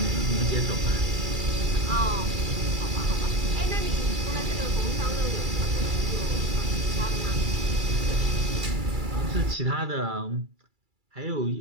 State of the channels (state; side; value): late; left; 2.3 ms